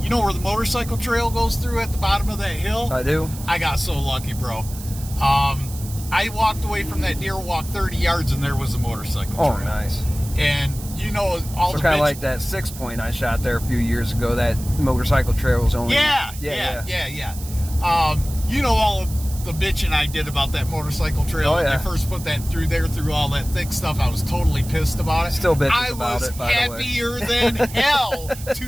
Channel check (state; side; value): noise; right; hiss, 14 dB below the sound